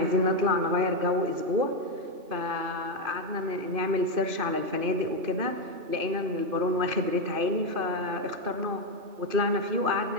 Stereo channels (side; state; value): left; late; 2.5 ms